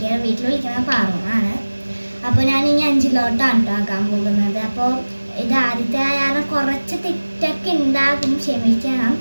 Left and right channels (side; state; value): both; inverted; correlation -1.00